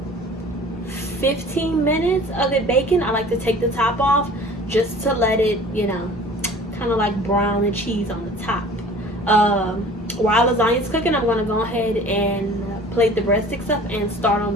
15 minutes of it baking, I like to take the top off just to let it, you know, kind of like brown and cheese on the top. While lasagna is cooking, I'm going to go ahead and plate the breadsticks up and start on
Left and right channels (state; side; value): normal; both; correlation 0.45